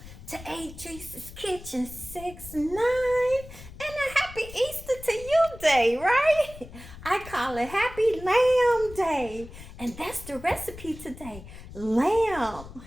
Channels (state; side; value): noise; left; rumble, 15 dB below the sound